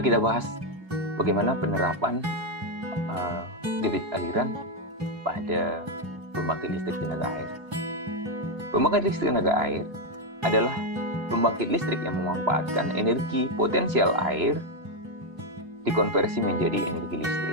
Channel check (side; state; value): left; late; 3.0 ms